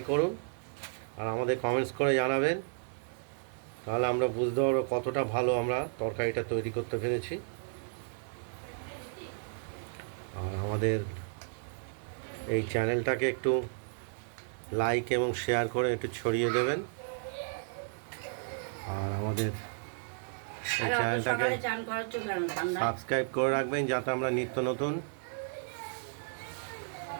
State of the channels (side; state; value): left; silent; digital silence